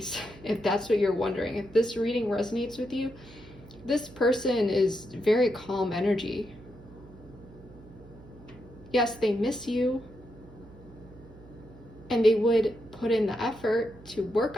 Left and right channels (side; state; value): right; noise; hum, 21 dB below the sound